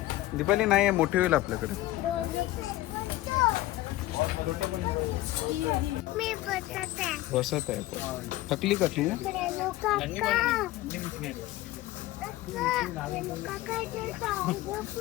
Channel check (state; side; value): quieter; right; 16.8 dB